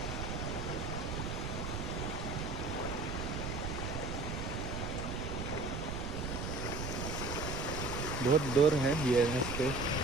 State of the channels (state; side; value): noise; right; rumble, 4 dB below the sound